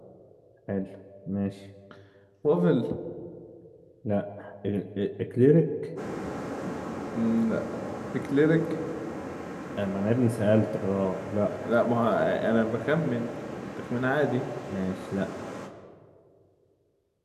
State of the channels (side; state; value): both; identical; correlation 1.00